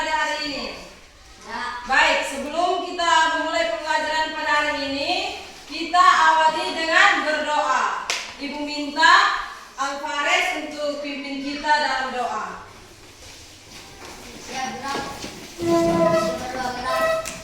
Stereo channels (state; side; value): identical; both; correlation 1.00